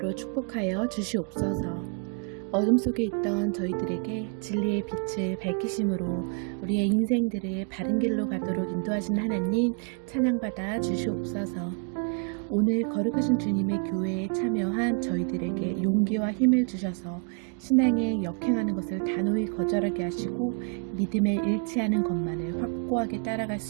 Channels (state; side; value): quieter; left; 37.9 dB